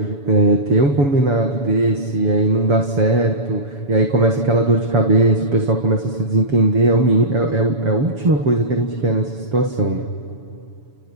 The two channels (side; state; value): left; late; 7.1 ms